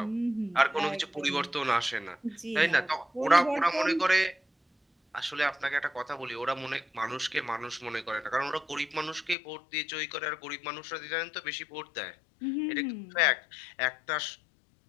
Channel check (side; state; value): right; drops out; at 9.3 s